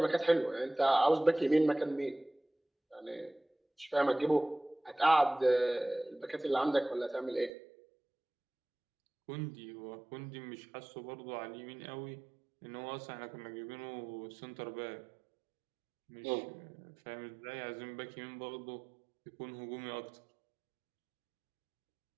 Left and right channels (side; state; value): left; drops out; at 7.5 s